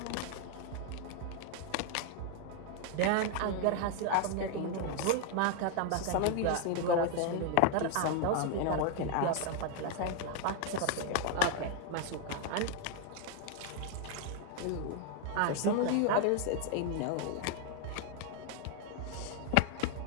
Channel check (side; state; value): both; different; correlation 0.00